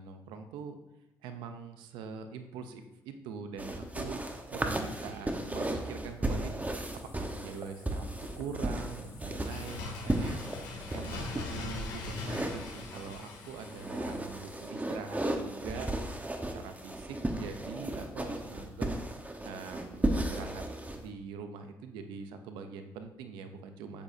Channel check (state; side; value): normal; both; correlation 0.75